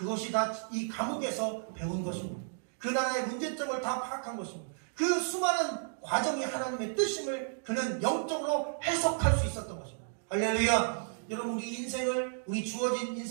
다 이 감옥에서 배운 것입니다. 그 나라의 문제점을 다 파악한 것입니다. 그 수많은 과정이 하나님의 뜻임을 그는 영적으로 해석할 수 있었던 것입니다. 할렐루야. 여러분, 우리 인생을, 우리 주어진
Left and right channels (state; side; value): silent; left; digital silence